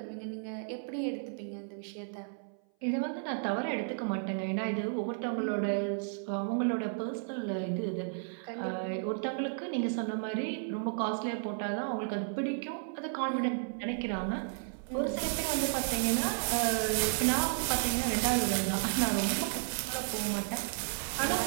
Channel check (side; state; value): left; silent; 56 dB below the other